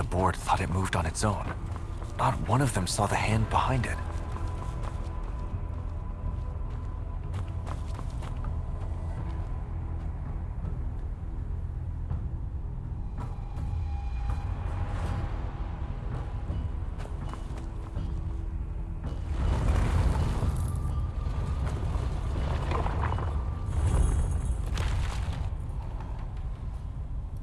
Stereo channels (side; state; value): both; identical; correlation 1.00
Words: board thought it moved on its own. Not one of them saw the hand behind it.